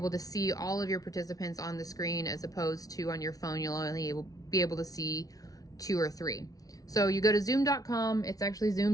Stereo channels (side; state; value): right; late; 0.18 ms